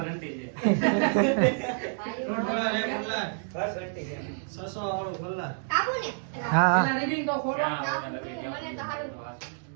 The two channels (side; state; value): left; silent; digital silence